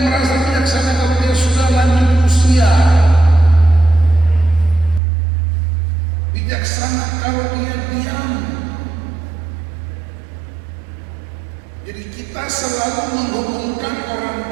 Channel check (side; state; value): left; drops out; at 5.0 s